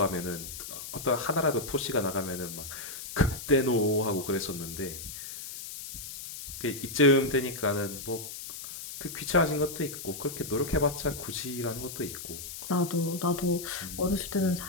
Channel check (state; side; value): noise; left; hiss, 10 dB below the sound